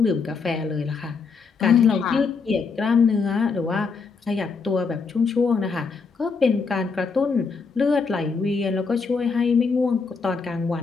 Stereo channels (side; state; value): right; quieter; 4.9 dB